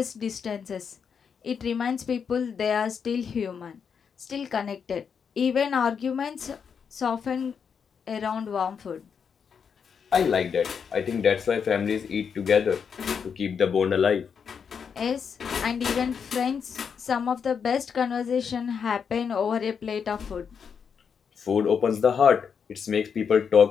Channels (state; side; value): quieter; right; 6.7 dB